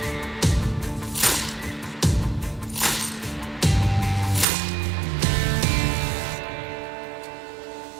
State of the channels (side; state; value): left; drops out; at 4.5 s